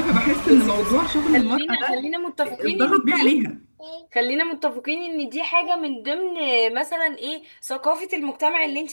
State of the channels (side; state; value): both; inverted; correlation -1.00